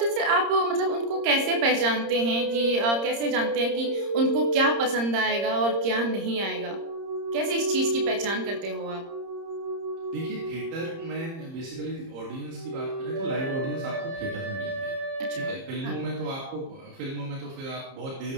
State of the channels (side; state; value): left; late; 30 ms